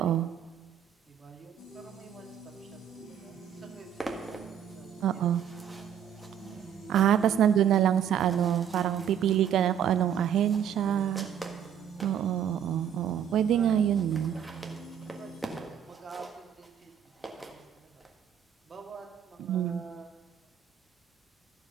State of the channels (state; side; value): quieter; left; 9.2 dB